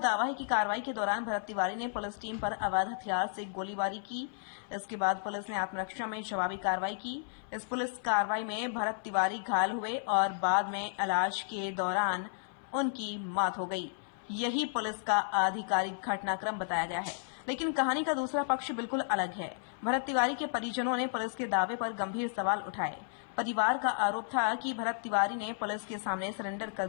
है कि कार्रवाई के दौरान भरत तिवारी ने पुलिस टीम पर अवैध हथियार से गोलीबारी की। इसके बाद पुलिस ने आत्मरक्षा में जवाबी कार्रवाई की। इस पुलिस कार्रवाई में भरत तिवारी घायल हुए और बाद में इलाज के दौरान उनकी मौत हो गई। यही पुलिस का आधिकारिक घटनाक्रम बताया गया है, लेकिन कहानी का दूसरा पक्ष बिल्कुल अलग है। भरत तिवारी के परिजनों ने पुलिस के दावे पर गंभीर सवाल उठाए। परिवार का आरोप था कि भरत तिवारी ने पुलिस के सामने सरेंडर कर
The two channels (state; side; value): silent; right; 56 dB below the other